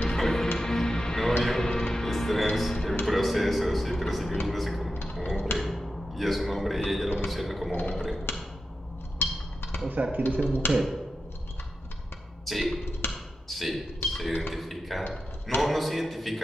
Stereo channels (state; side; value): normal; both; correlation 0.90